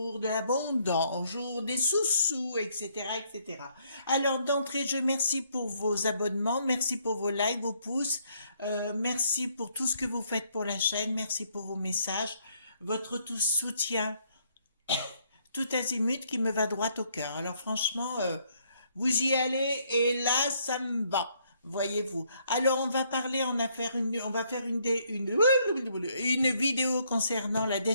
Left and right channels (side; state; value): both; inverted; correlation -0.69